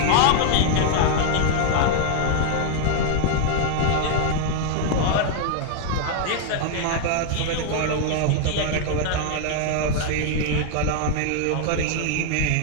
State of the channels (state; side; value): different; both; correlation 0.00